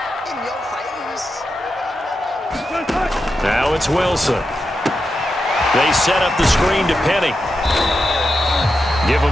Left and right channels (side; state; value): both; normal; correlation 0.88